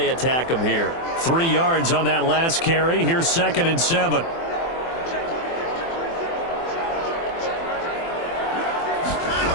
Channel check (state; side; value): late; right; 24 ms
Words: attack them here. 3 yards on that last carry. Here's 2nd and 7.